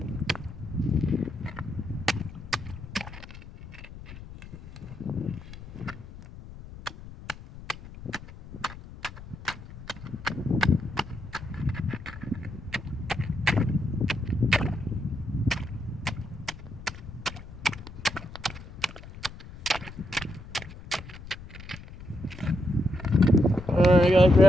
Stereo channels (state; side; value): noise; left; rumble, 14 dB below the sound